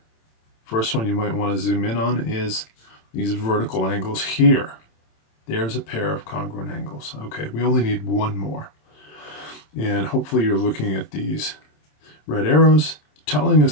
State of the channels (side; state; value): right; late; 27 ms